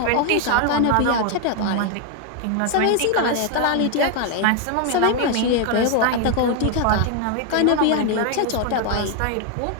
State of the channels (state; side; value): different; both; correlation 0.01